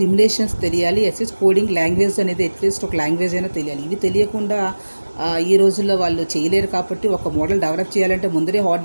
తెలియాలి, కోడింగ్ లాంగ్వేజ్ అనేది అట్లీస్ట్ ఒక లాంగ్వేజ్ అయినా తెలియాలి. ఇవి తెలియకుండా ఈ రోజుల్లో వాళ్ళు చేయలేరు. కాబట్టి ఒక మోడల్ డెవలప్ చేయాలంటే ముందరే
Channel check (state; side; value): inverted; both; correlation -1.00